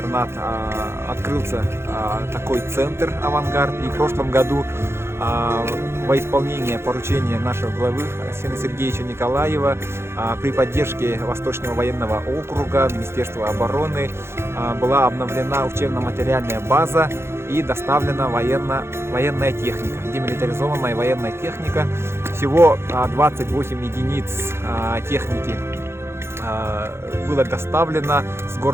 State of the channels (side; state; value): left; late; 0.12 ms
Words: открылся такой центр «Авангард». И в прошлом году во исполнение поручения нашего главы Арсения Сергеевича Николаева при поддержке Восточного военного округа, Министерства обороны была обновлена учебно-материальная база и доставлена военная техника, демилитаризованная военная техника. Всего 28 единиц техники было доставлено с